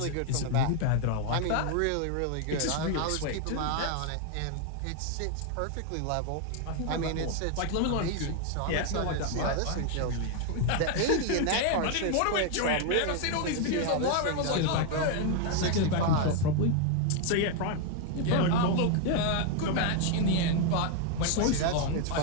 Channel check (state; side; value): different; both; correlation 0.01